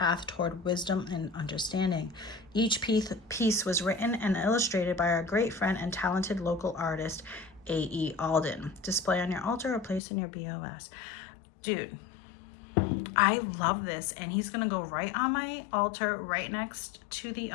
toward wisdom and understanding. Each piece was written and illustrated by our great friend and talented local artist, A.E. Alden. Display on your altar or place in your BOS. Dude, I love this, and he's gonna go right on my altar, right next to the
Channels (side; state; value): right; drops out; at 10.0 s